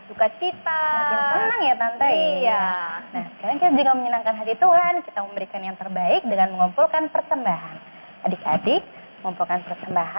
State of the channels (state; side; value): inverted; both; correlation -1.00